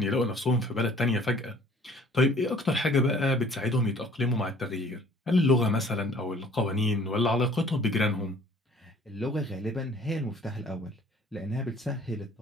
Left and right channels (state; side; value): normal; both; correlation 0.54